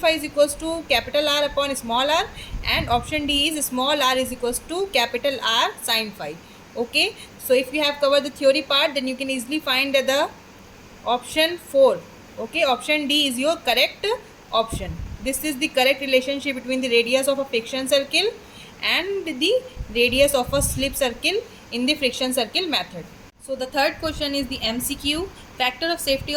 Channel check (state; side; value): identical; both; correlation 1.00